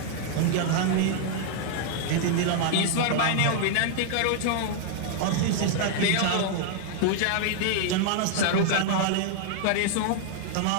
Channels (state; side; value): different; both; correlation 0.00